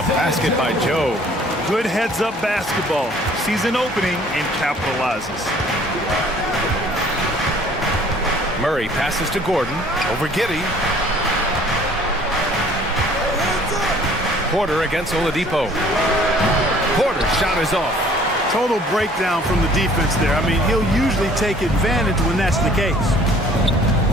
basket by Joe. Good heads-up basketball. Season opening and capitalizes. Murray passes to Gordon. Over Giddey. Porter against Oladipo. Porter's shot is off. Total breakdown from the defense there. I mean, he'll usually take advantage when that's the case.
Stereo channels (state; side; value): normal; both; correlation 0.55